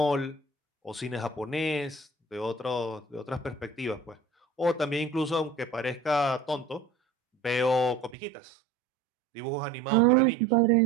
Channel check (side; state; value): left; drops out; at 8.2 s